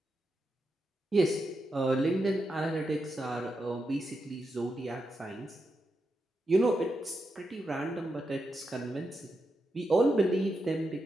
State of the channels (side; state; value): both; normal; correlation 0.86